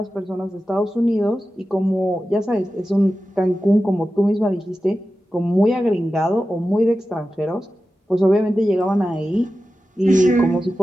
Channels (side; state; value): both; normal; correlation 0.93